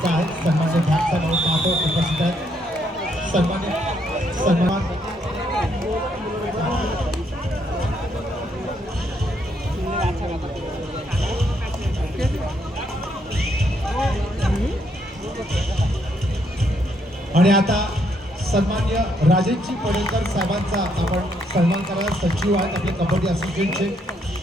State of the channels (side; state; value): both; normal; correlation 0.73